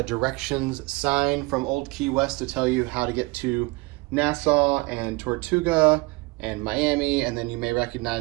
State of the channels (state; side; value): quieter; left; 25.1 dB